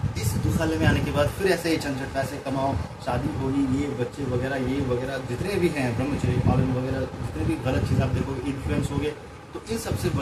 इस दुखालय में आने के बाद फिर ऐसे ही झंझट, पैसे कमाओ, शादी होगी, ये बच्चे वगैरह, ये वगैरह जितने भी हैं, ब्रह्मचर्य पालन वगैरह, जितने भी गलत चीज़ आप देखोगे, इन्फ्लुएंस हो गए, तो इन सबसे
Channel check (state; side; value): identical; both; correlation 1.00